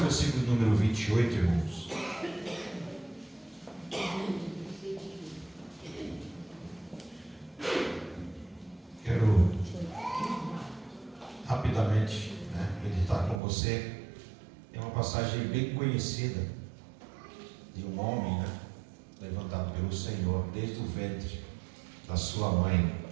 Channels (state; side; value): drops out; left; at 13.4 s